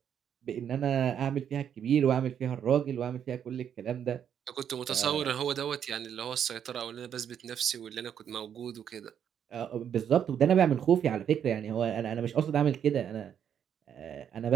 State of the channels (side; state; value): left; quieter; 8.7 dB